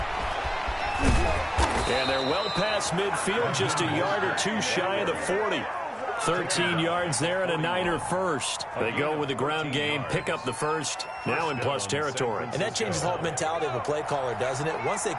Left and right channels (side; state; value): both; identical; correlation 1.00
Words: And they're well past midfield, just a yard or two shy of the 40. 13 yards there and a Niner first. They go with the ground game, pick up the first, now in plus territory. And that changes the whole mentality of a play caller, doesn't it? Once they